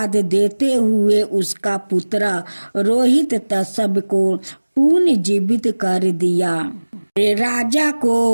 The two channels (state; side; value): inverted; both; correlation -1.00